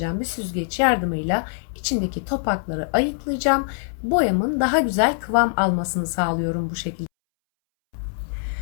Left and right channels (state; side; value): silent; right; 63 dB below the other